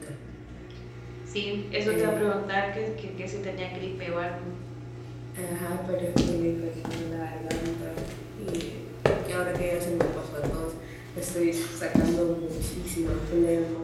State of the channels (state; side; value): identical; both; correlation 1.00